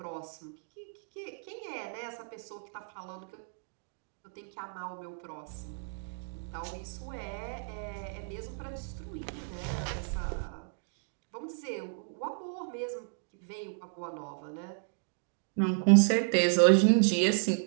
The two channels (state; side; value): silent; left; digital silence